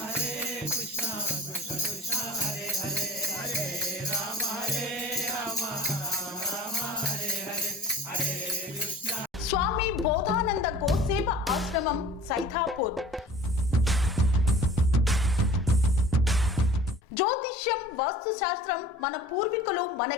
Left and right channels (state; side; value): normal; both; correlation 0.44